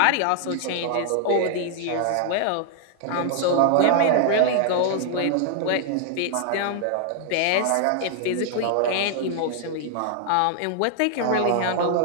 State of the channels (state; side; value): different; both; correlation 0.00